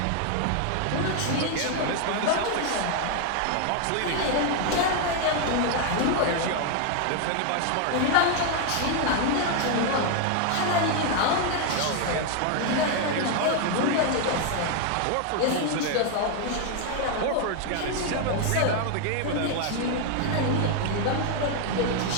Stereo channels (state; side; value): different; both; correlation 0.00